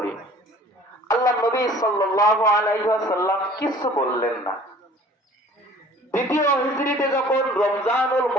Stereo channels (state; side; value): normal; both; correlation 0.49